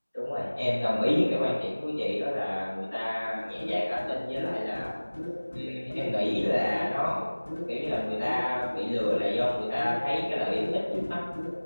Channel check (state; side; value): inverted; both; correlation -1.00